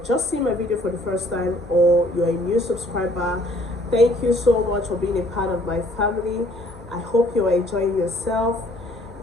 seeing my video for the first time or you're a new subscriber, thank you so much for being a part of my family. I hope you are enjoying yourself.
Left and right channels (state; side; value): normal; both; correlation 0.59